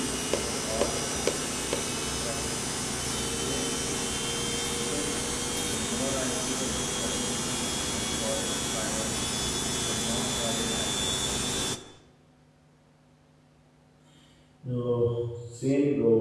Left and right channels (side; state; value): both; identical; correlation 1.00